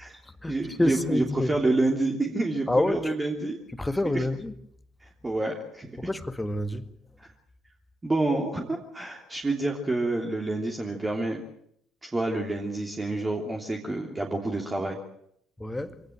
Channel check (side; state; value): both; normal; correlation 0.90